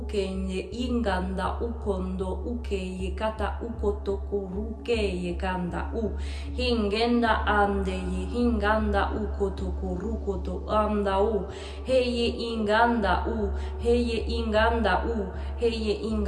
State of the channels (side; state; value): both; identical; correlation 1.00